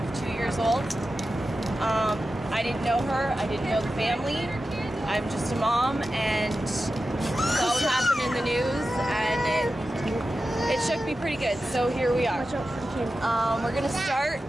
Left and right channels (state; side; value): normal; both; correlation 0.92